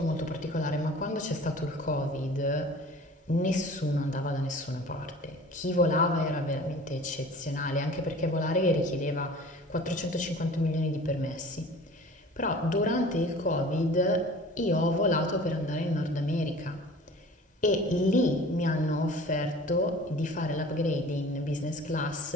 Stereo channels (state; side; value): normal; both; correlation 0.44